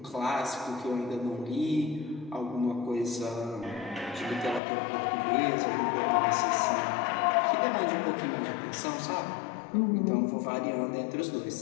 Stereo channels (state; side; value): drops out; right; at 4.6 s